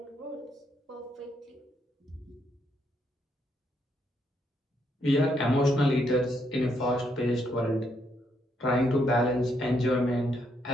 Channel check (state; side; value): normal; both; correlation 0.76